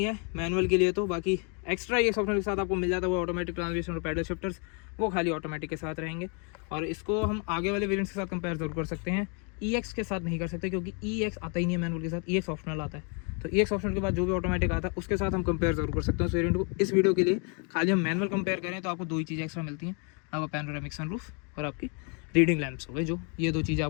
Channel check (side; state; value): right; quieter; 37.0 dB